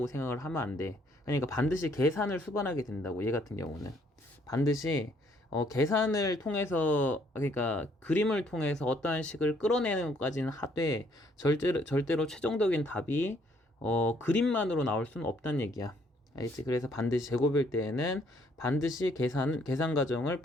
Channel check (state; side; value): normal; both; correlation 0.66